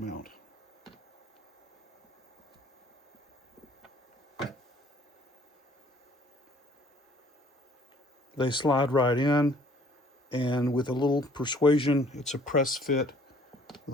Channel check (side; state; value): both; normal; correlation 0.58